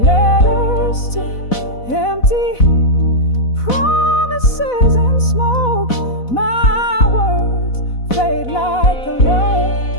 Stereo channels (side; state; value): right; late; 4.1 ms